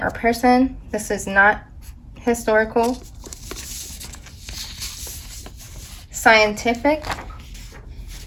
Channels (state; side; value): identical; both; correlation 1.00